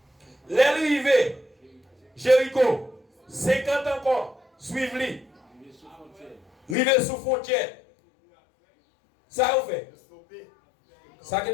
L'arrivée, Jéricho, 50 encore, suivez-lui. Rive sous frontière. Ça vous fait? Ça qui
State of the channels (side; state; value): right; drops out; at 6.8 s